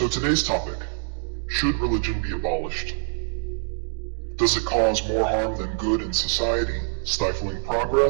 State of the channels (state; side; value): silent; left; digital silence